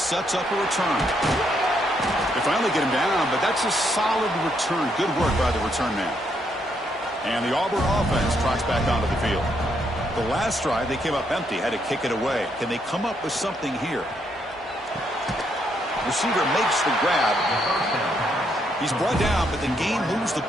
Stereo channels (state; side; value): normal; both; correlation 0.75